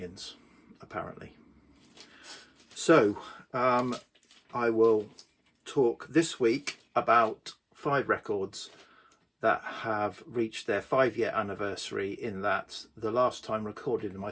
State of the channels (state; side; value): identical; both; correlation 1.00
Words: apparently. So I will talk this week about 5 records that have reached their 5-year anniversary, in that the last time recorded in my